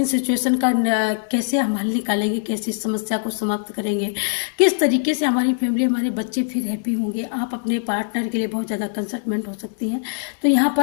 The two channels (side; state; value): right; silent; digital silence